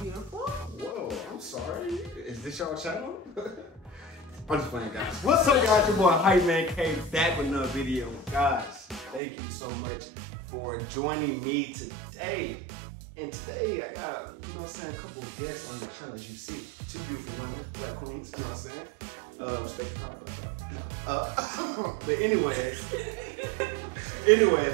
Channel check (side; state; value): left; drops out; at 9.2 s